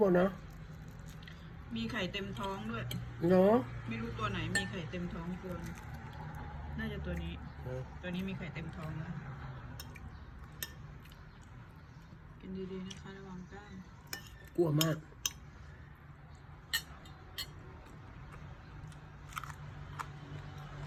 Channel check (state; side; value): identical; both; correlation 1.00